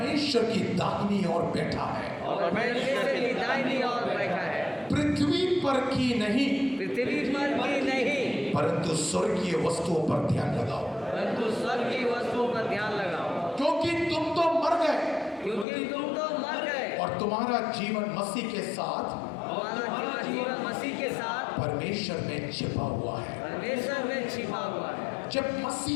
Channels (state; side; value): drops out; right; at 15.7 s